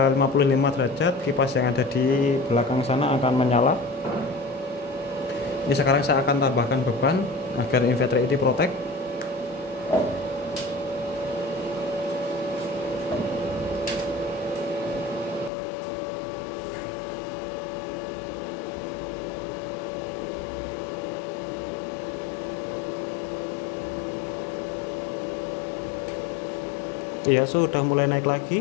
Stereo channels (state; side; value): drops out; right; at 15.5 s